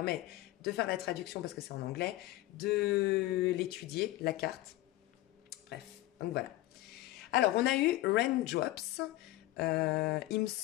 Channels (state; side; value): quieter; right; 17.1 dB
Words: de faire la traduction parce que c'est en anglais, de l'étudier, la carte. Bref, donc voilà. Alors, on a eu Raindrops. Il me